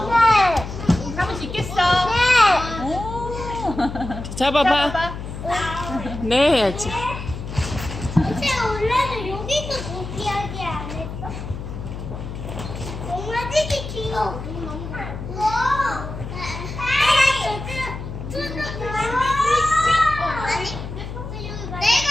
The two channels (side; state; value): left; noise; hum, 8 dB below the sound